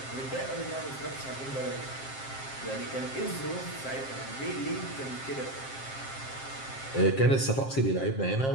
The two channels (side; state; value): right; late; 7.5 ms